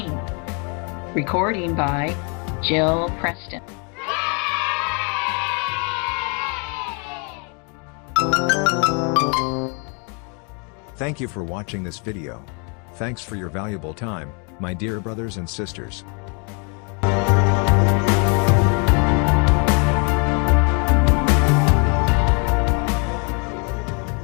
Recording by Jill Preston. Thank you for watching this video. Thanks for your valuable time, my dear brothers and sisters.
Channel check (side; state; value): right; quieter; 35.7 dB